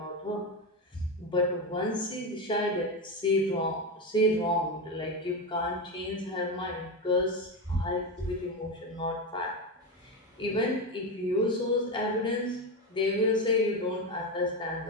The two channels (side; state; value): both; normal; correlation 0.15